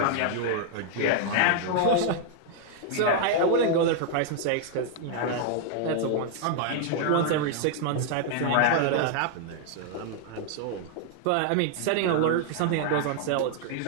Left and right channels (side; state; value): both; different; correlation 0.00